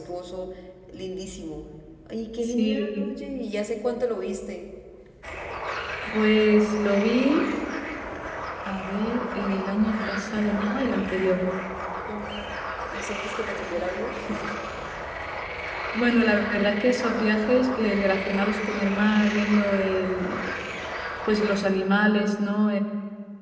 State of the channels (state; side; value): identical; both; correlation 1.00